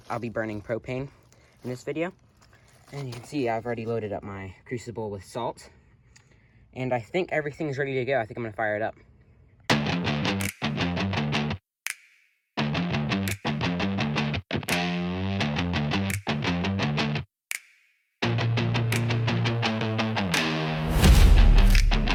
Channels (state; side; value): identical; both; correlation 1.00